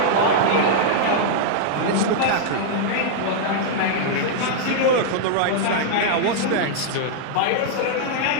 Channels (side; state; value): both; different; correlation -0.01